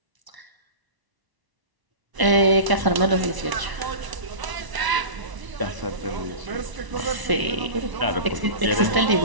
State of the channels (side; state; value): left; late; 1.0 ms